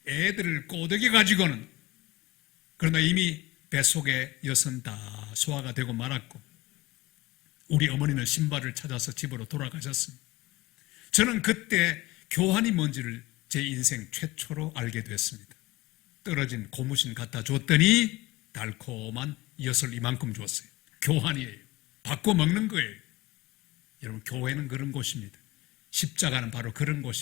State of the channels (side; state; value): right; quieter; 19.3 dB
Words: 애들을 꼬드겨 가지고는. 그러나 이미 뱃속에 엿은 다 소화가 되고 말았고 우리 어머니는 신발을 찾아서 집으로 돌아가셨습니다. 저는 그때 교환이 뭔지를 제 인생 최초로 알게 됐습니다. 떨어진 고무신 갖다 줬더니 달콤한 엿을 이만큼 줬어요. 교환이에요. 바꿔 먹는 거예요. 여러분, 교회는 그런 곳입니다. 십자가는 바로 그런